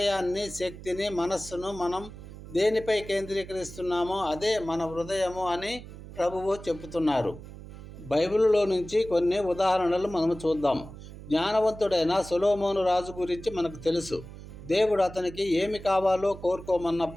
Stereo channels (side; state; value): right; noise; hum, 14 dB below the sound